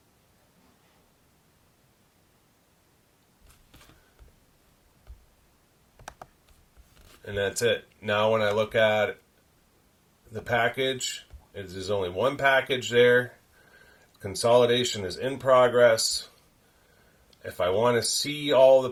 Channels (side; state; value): both; identical; correlation 1.00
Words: And that's it. Now when I look at the package, there's only one package there. Consolidation is in progress. If I want to see all the